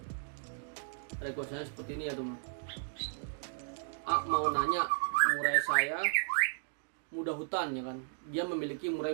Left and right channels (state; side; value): silent; left; digital silence